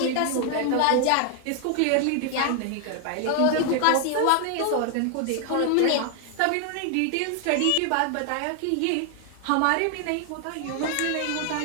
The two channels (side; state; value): both; different; correlation 0.00